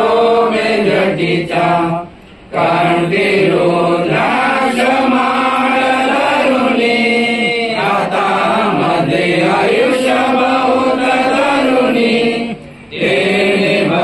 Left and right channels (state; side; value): identical; both; correlation 1.00